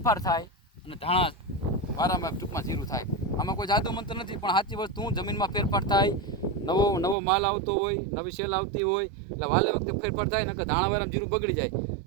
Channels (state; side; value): drops out; left; at 7.2 s